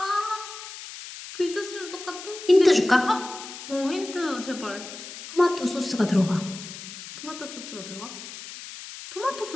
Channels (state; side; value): noise; left; hiss, 12 dB below the sound